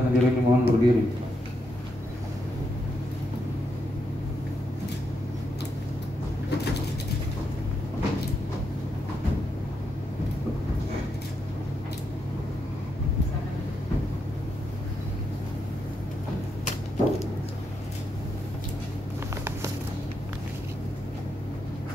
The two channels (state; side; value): normal; both; correlation 0.81